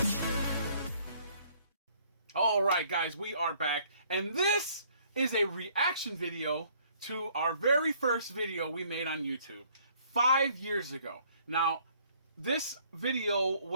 Alright guys, we are back, and this is a reaction video to our very first video we made on YouTube 5 years ago. Now, this video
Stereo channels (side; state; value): both; inverted; correlation -0.61